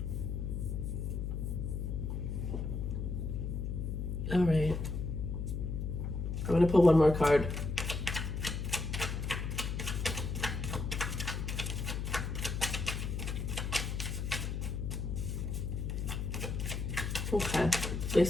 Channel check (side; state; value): left; noise; hum, 2 dB below the sound